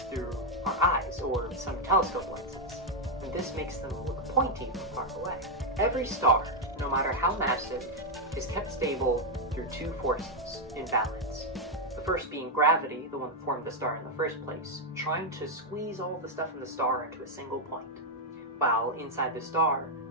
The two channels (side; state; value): both; normal; correlation 0.01